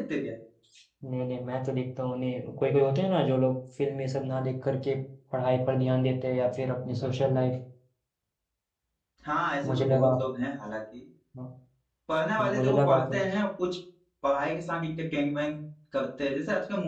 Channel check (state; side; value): identical; both; correlation 1.00